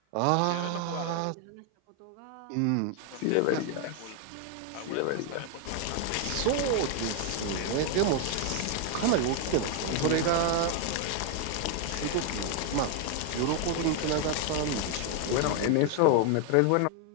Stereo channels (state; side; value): different; both; correlation 0.00